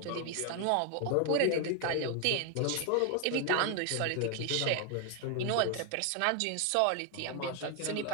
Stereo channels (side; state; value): both; different; correlation 0.00